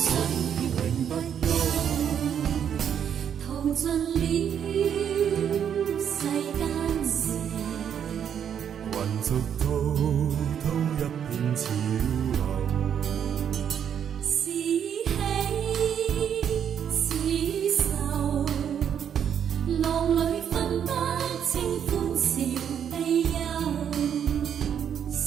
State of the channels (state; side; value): quieter; left; 8.6 dB